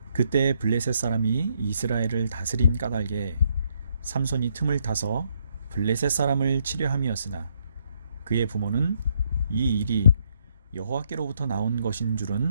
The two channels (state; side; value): inverted; both; correlation -0.72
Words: 그때 블레셋 사람이 이스라엘을 다스린 까닭에 삼손이 틈을 타서 블레셋 사람을 치려 함이었으나 그의 부모는 이 일이 여호와께로부터 나온 것인